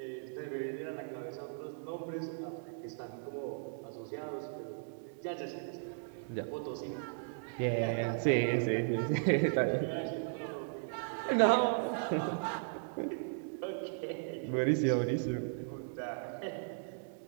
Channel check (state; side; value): silent; left; digital silence